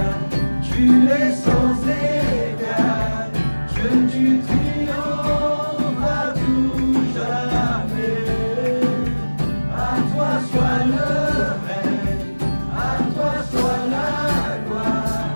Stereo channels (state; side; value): inverted; both; correlation -1.00